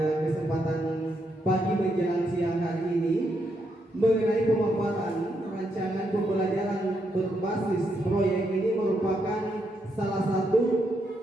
kesempatan pagi menjelang siang hari ini mengenai pemaparan rancangan pembelajaran berbasis proyek. Ini merupakan salah satu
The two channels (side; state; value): both; normal; correlation 0.79